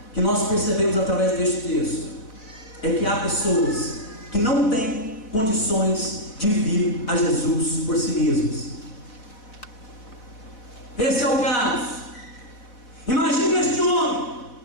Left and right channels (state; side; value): late; right; 4.2 ms